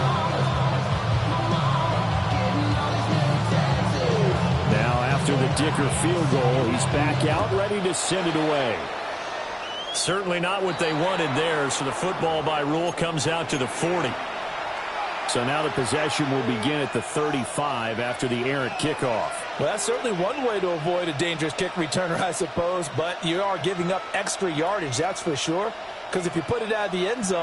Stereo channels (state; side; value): identical; both; correlation 1.00